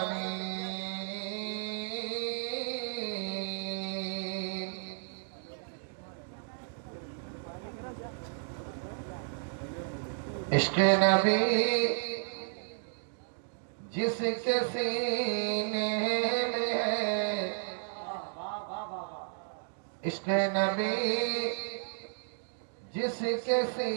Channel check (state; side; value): silent; left; digital silence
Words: عشق نبی جس کے سینے میں ہے، عشق نبی جس کے